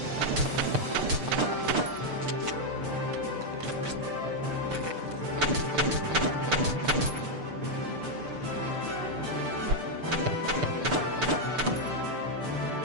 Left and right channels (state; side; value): late; left; 6.7 ms